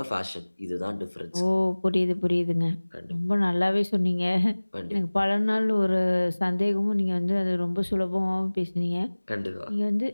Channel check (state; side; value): inverted; both; correlation -1.00